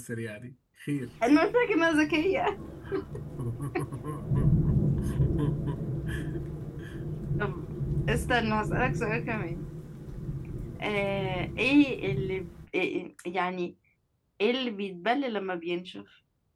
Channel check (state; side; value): identical; both; correlation 1.00